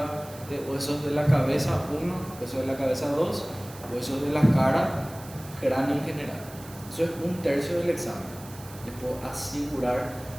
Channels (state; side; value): noise; right; hiss, 19 dB below the sound